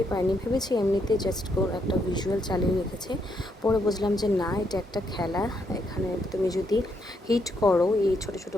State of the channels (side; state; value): both; normal; correlation 0.76